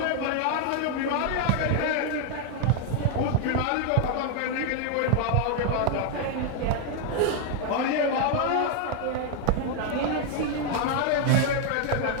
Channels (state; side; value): different; both; correlation 0.00